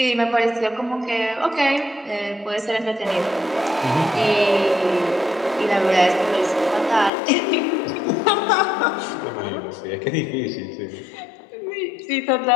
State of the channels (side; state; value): right; drops out; at 7.1 s